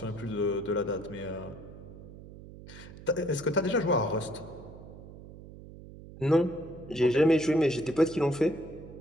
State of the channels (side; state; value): right; noise; hum, 16 dB below the sound